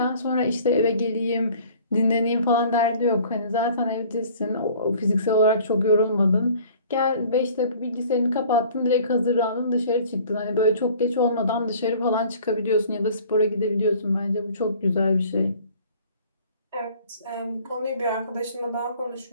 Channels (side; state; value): both; inverted; correlation -0.51